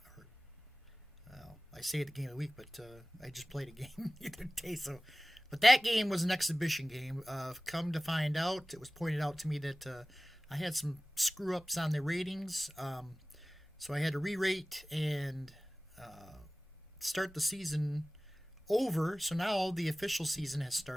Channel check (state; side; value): normal; both; correlation 0.98